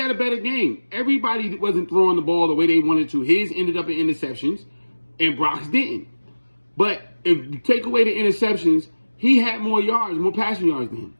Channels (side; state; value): both; inverted; correlation -1.00